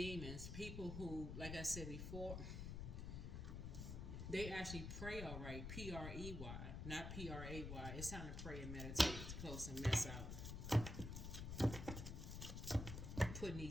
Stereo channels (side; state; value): left; noise; rumble, 5 dB below the sound